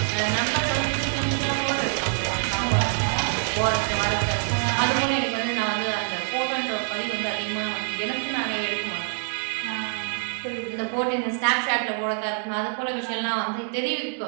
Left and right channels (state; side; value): silent; left; 61 dB below the other